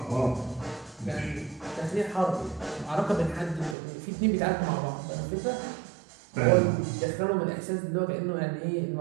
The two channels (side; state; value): left; drops out; at 3.8 s